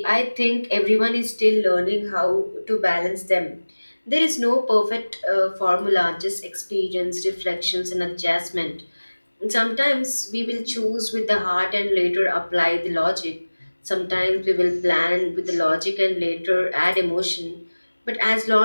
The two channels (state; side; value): inverted; both; correlation -1.00